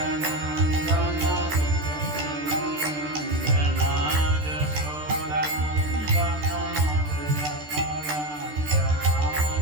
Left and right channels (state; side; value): late; left; 13 ms